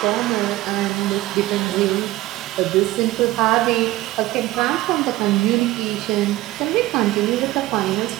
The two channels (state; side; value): quieter; left; 17.2 dB